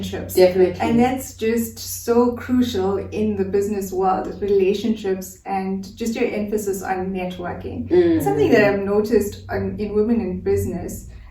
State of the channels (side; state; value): both; identical; correlation 1.00